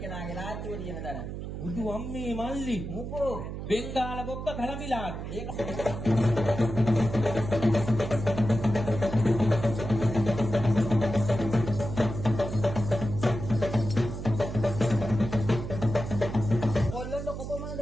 නාගේ ලාච්චුව තියෙන තැන. බුදු අම්මේ මල්ලි. මොකෝ? බෙන්ගාල බොක්ක කලඹිලා. ඒක කොල්ලන්ට කොපමණ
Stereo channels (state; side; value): noise; right; hum, 7 dB below the sound